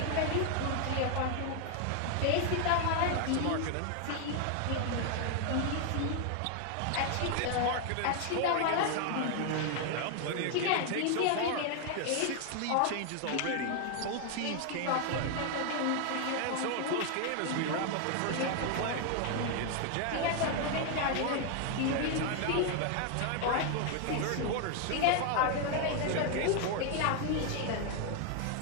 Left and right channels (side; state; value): both; different; correlation 0.00